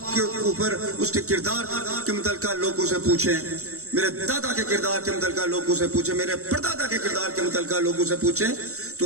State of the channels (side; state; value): left; late; 0.64 ms